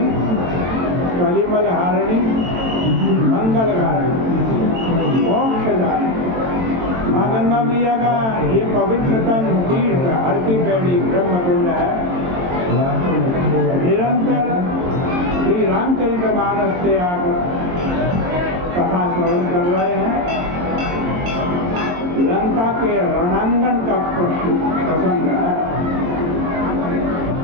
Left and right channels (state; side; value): late; left; 22 ms